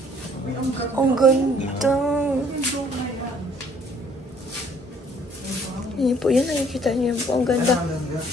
Ay, ang ganda. Ang ganda! Yung na yan. Yan po, yan nakikita niyo po. Ang ganda.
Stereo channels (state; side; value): normal; both; correlation 0.59